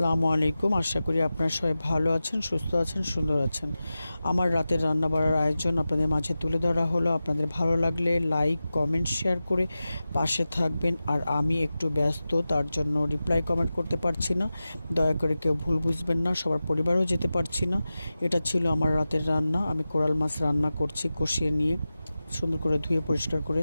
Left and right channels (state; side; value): inverted; both; correlation -0.94